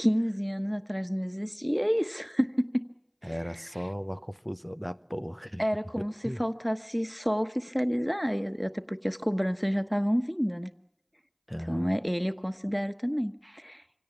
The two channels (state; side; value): identical; both; correlation 1.00